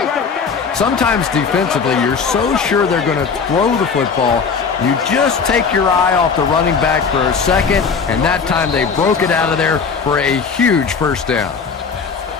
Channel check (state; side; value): quieter; right; 5.6 dB